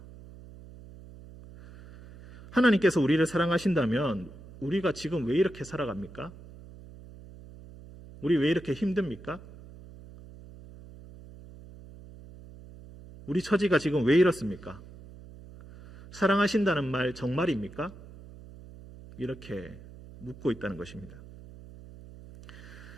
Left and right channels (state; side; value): noise; right; hum, 18 dB below the sound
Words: 하나님께서 우리를 사랑하신다면 우리가 지금 왜 이렇게 살아갑니까? 우리 왜 이렇게 힘듭니까? 우리 처지가 지금 왜 이렇습니까? 사랑하신다는 말 정말입니까? 이렇게 묻고 있다는 것입니다.